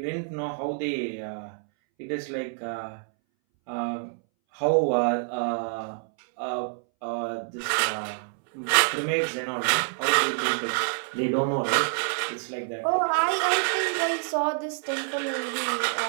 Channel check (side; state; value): left; silent; 60 dB below the other